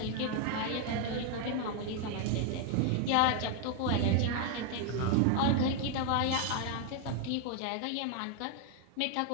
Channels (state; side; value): different; both; correlation 0.01